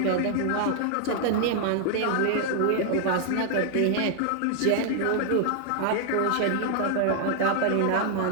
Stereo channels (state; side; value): different; both; correlation 0.00